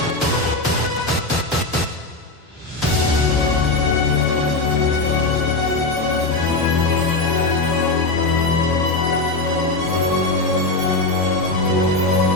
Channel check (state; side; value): quieter; right; 3.2 dB